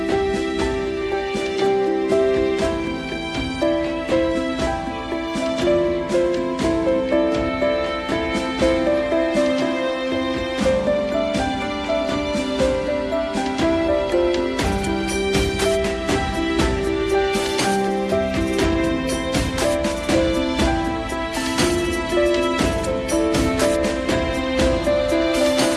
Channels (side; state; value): both; identical; correlation 1.00